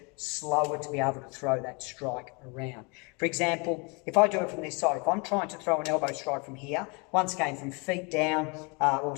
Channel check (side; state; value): right; quieter; 31.3 dB